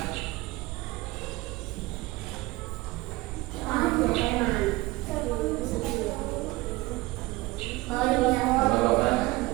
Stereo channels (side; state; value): left; quieter; 20.4 dB